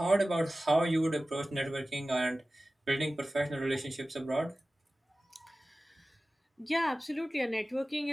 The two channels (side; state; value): both; normal; correlation 0.96